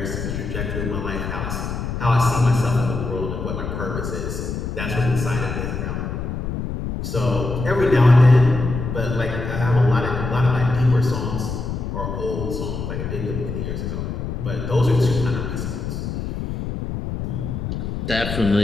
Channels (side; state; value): left; noise; rumble, 4 dB below the sound